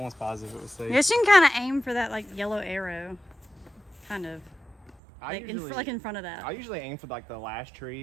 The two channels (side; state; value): left; drops out; at 5.0 s